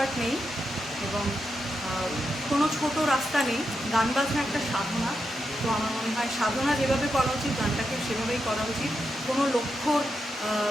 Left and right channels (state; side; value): normal; both; correlation 0.85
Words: নেই এবং কোনো ছোট রাস্তা নেই। গান বাজনা একটা সাধনা। তো আমার মনে হয় সাধনা যেভাবে করা উচিত গানটাকে সেভাবেই করা উচিত। কোনো লক্ষ্যর